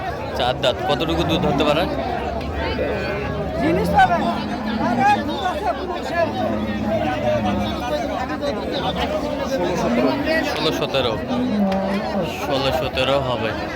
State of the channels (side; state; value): both; identical; correlation 1.00